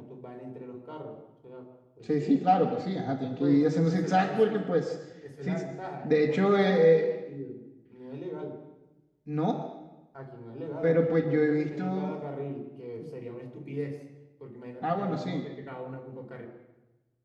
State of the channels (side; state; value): both; identical; correlation 1.00